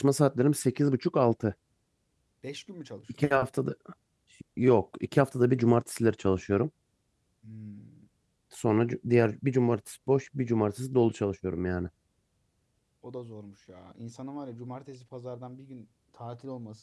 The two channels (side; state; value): both; identical; correlation 1.00